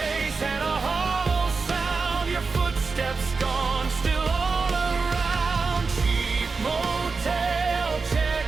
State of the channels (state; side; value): quieter; left; 4.5 dB